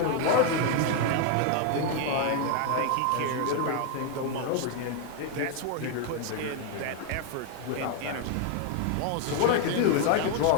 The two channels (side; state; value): both; different; correlation 0.00